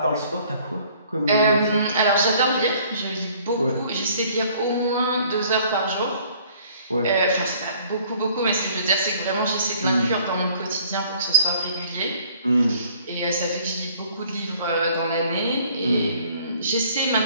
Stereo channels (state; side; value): inverted; both; correlation -0.57